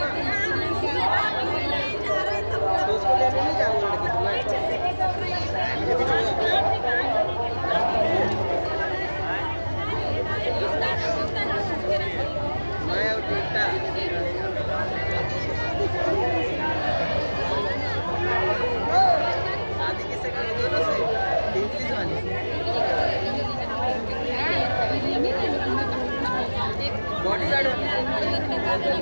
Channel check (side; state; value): both; inverted; correlation -1.00